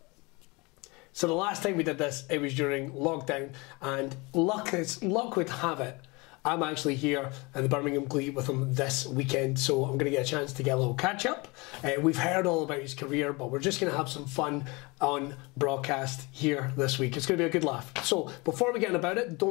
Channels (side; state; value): right; quieter; 26.2 dB